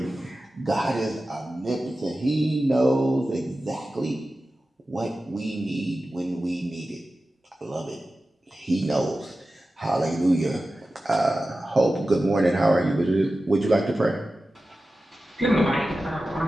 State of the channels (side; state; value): both; normal; correlation 0.94